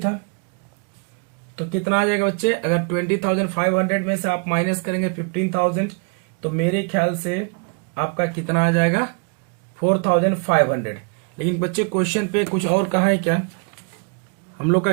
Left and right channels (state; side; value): quieter; left; 37.8 dB